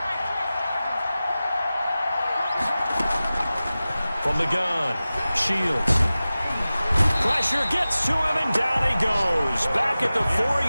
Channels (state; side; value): inverted; both; correlation -0.96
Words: From the gun, Shields. Pressure gets to him, and down he goes. Back at the